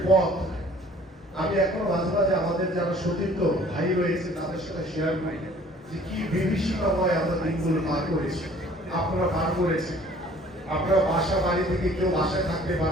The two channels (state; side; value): normal; both; correlation 0.53